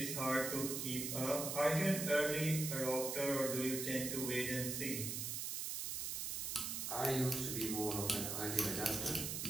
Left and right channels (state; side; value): noise; right; hiss, 2 dB below the sound